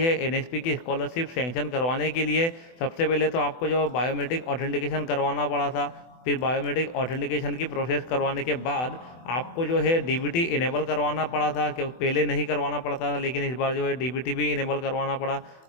एनएसपी की स्कॉलरशिप सैंक्शन करवाने के लिए। सबसे पहले तो आपको जो बायोमेट्रिक ऑथेंटिकेशन करवाना पड़ा था, फिर बायोमेट्रिक ऑथेंटिकेशन की प्रोसेस करवाने के बाद आपको जो है डीबीटी इनेबल करवाना पड़ा था, क्योंकि पहले नहीं करवाना पड़ता था, लेकिन इस बार जो है डीबीटी भी इनेबल करवाना पड़ा।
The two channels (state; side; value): late; right; 24 ms